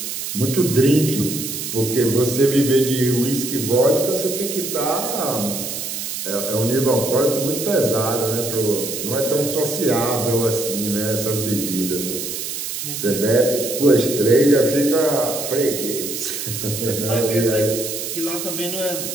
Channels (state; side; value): noise; right; hiss, 5 dB below the sound